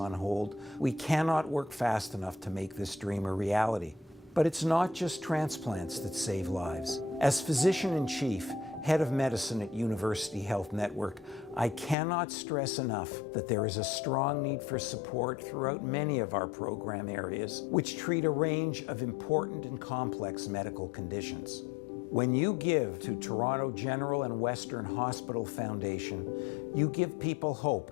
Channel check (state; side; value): drops out; right; at 12.0 s